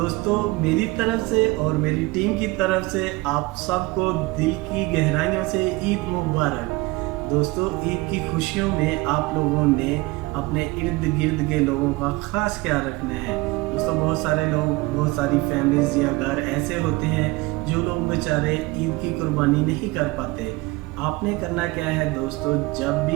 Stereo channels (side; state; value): left; quieter; 22.5 dB